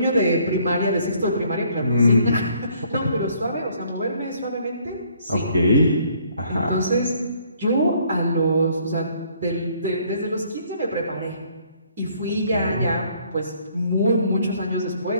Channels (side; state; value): both; inverted; correlation -0.63